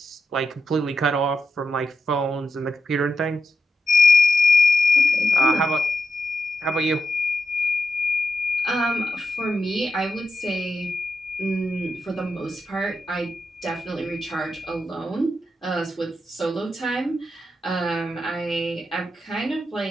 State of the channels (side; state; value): both; normal; correlation 0.84